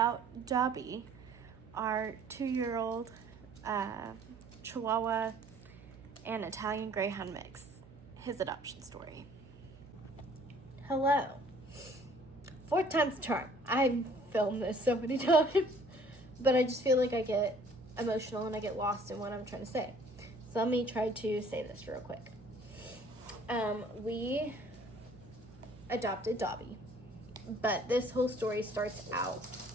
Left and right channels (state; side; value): noise; right; hum, 21 dB below the sound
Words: Dobby, our 2-year-old Chihuahua and Italian Greyhound mix, his adoption story. Hello. 4th time's the charm. I've filmed this so many times, but I just feel like I get emotional and I get lost in what I'm trying to say. So let me try to say this real quick. We adopted Dobby, but this whole story starts out